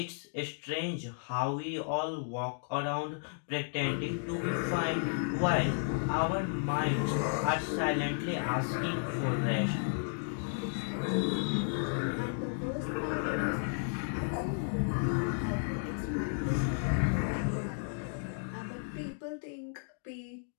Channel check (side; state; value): right; silent; digital silence